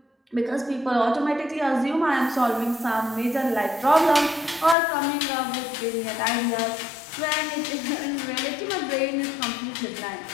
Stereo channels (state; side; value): drops out; right; at 4.8 s